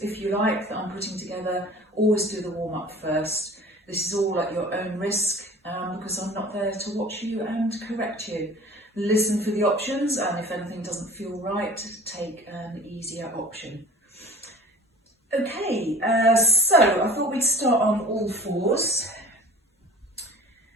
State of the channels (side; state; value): both; normal; correlation 0.44